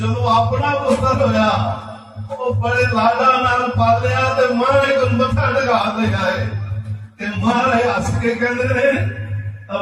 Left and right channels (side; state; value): both; identical; correlation 1.00